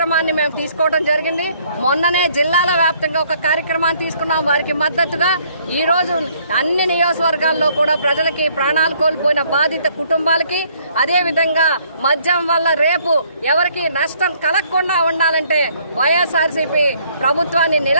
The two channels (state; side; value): inverted; both; correlation -0.64